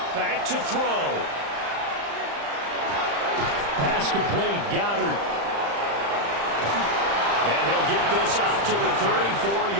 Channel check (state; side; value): late; left; 35 ms